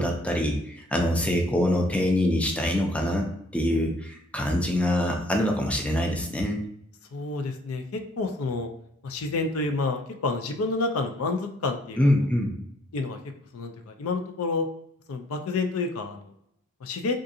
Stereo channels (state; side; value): normal; both; correlation 0.62